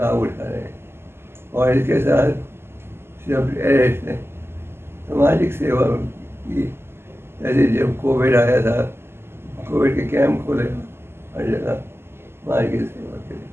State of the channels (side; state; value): left; late; 0.12 ms